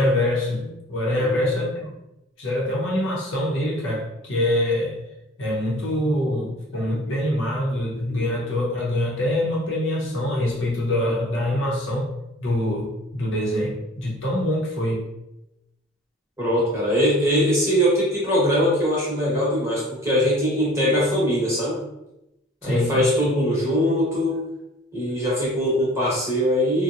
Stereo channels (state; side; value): normal; both; correlation 0.47